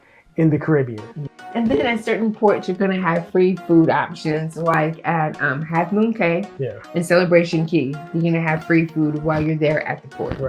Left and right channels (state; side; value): identical; both; correlation 1.00